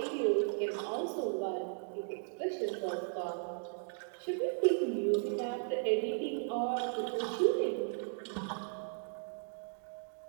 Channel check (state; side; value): silent; left; digital silence